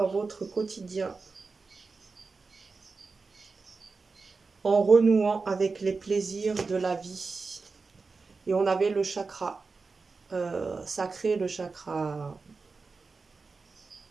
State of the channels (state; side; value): quieter; left; 4.3 dB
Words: votre quotidien en renouant avec les plaisirs de la vie. Et on avait le chakra sacré, le chakra...